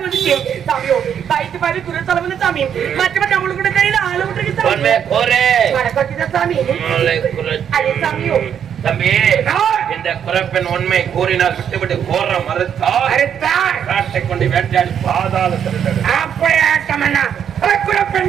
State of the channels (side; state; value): left; quieter; 8.6 dB